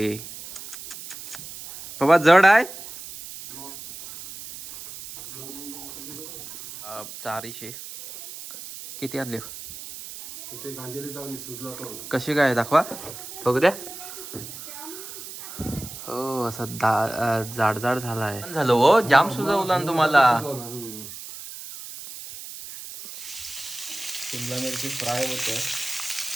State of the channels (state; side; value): noise; right; hiss, 12 dB below the sound